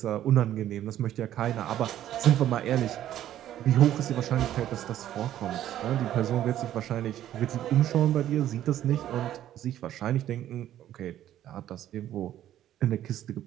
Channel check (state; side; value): quieter; left; 12.0 dB